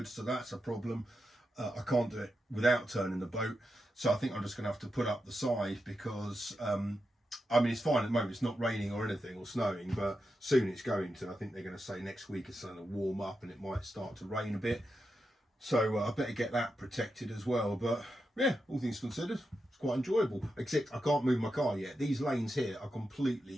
so that's a problem. I can't do it without turning the boat, so I think I'm just going to have to put up the side because, I mean, it's fine at the moment. It's not raining or anything or snowing, but soon it's going to. I think they're going to say next week it's going to warm up and it might start to rain a bit. So I better get that protected as well. But yeah, all things considered, it's quite enjoyable. Except I can't move my car yet. These lanes here are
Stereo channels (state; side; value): normal; both; correlation 0.87